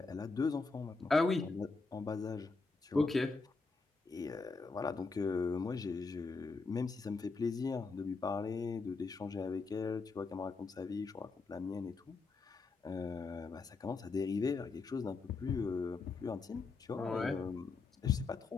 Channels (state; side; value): quieter; right; 4.2 dB